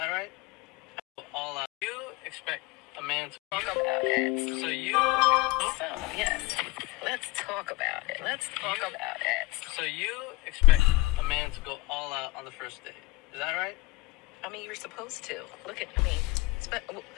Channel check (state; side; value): quieter; right; 21.5 dB